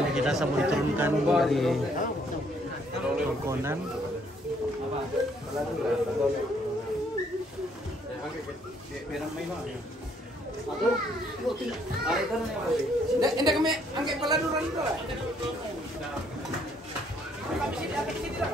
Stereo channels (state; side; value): normal; both; correlation 0.67